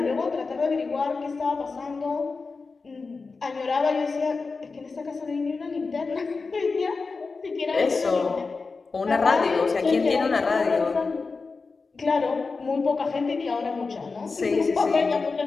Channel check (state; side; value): quieter; right; 4.3 dB